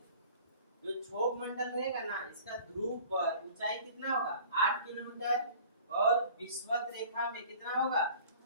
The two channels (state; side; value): inverted; both; correlation -0.47